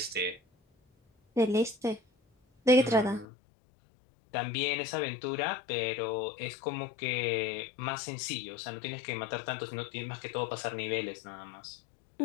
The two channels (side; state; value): right; drops out; at 3.2 s